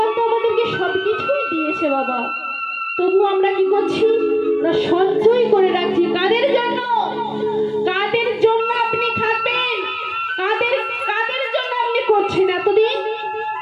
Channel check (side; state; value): both; identical; correlation 1.00